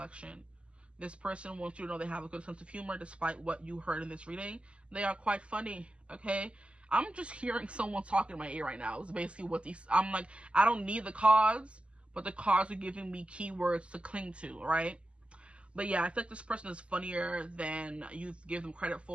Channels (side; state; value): left; late; 0.056 ms